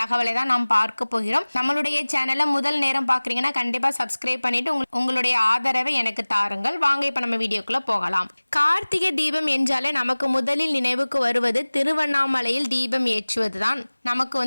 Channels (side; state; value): both; inverted; correlation -1.00